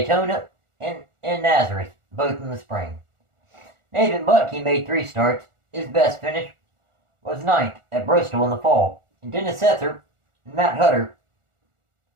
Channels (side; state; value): left; late; 1.4 ms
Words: and in Nazareth, both in the spring. Nathan Butke made 3 starts. His best finish was 9th at Bristol in the fall. And Dennis Setzer and Matt Hutter